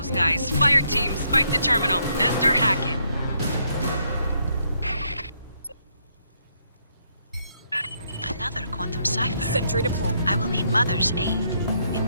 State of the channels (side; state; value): both; inverted; correlation -0.74